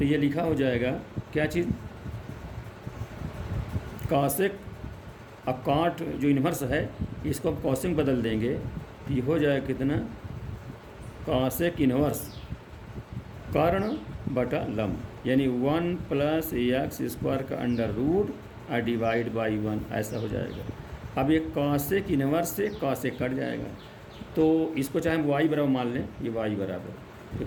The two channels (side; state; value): both; identical; correlation 1.00